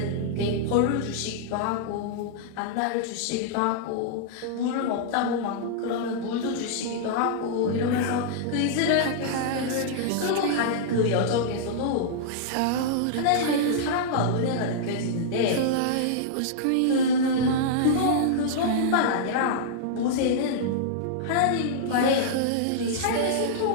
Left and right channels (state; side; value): different; both; correlation -0.02